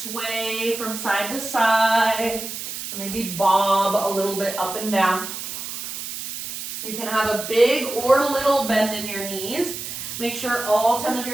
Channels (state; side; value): noise; right; hiss, 7 dB below the sound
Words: from side to side, or maybe bob a little bit up and down. You can have a big or little bend in your knees. Make sure all 10 of